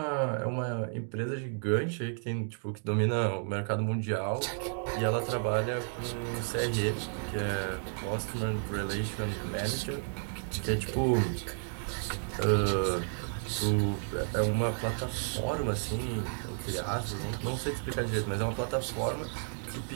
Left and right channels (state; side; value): silent; left; 56 dB below the other